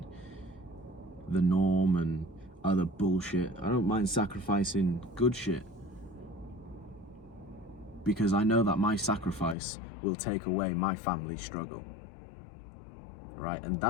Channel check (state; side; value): drops out; right; at 9.6 s